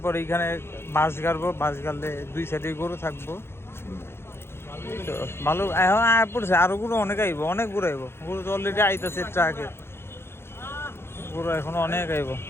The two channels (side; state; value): right; late; 0.12 ms